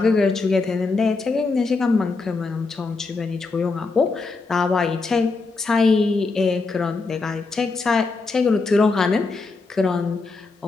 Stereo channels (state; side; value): quieter; right; 4.0 dB